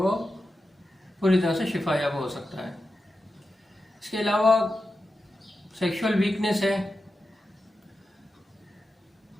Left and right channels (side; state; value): both; normal; correlation 0.91